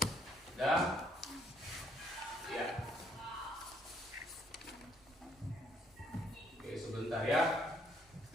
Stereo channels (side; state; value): both; normal; correlation 0.67